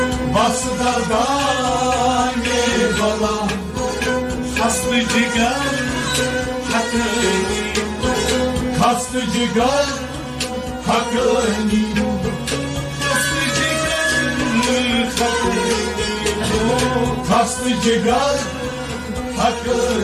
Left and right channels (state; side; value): identical; both; correlation 1.00